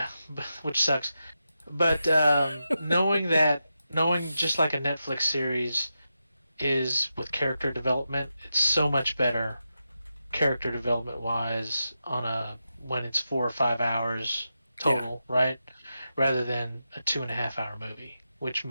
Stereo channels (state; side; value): inverted; both; correlation -0.89